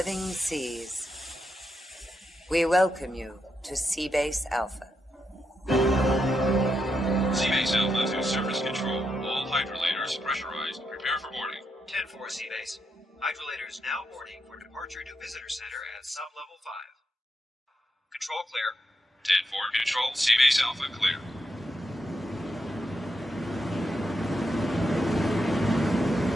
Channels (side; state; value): both; normal; correlation 0.83